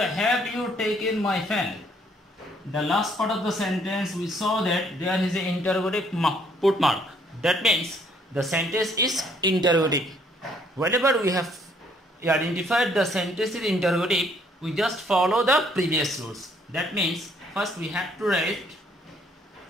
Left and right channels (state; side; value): normal; both; correlation 0.65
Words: have you taken my fan. The last part of the sentence we saw that there is an interrogative put mark. That means the sentence is interrogative. Whenever we have identified the sentence is interrogative, we just follow the previous rules. That means first we have to write